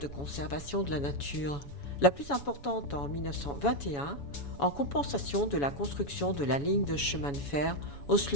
conservation de la nature. La plus importante en 1921, en compensation de la construction de la ligne de chemin de fer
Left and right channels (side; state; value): right; late; 7.1 ms